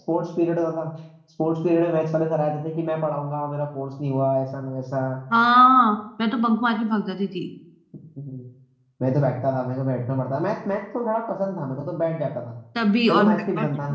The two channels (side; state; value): both; identical; correlation 1.00